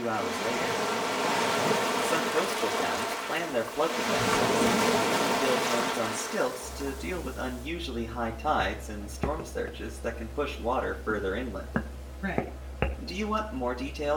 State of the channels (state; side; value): identical; both; correlation 1.00